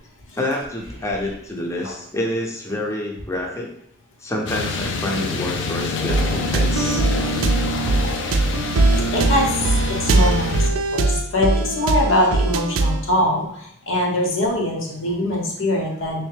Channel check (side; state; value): both; normal; correlation 0.40